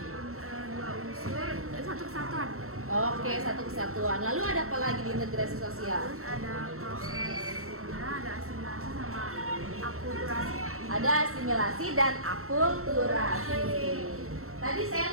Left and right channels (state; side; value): late; left; 0.63 ms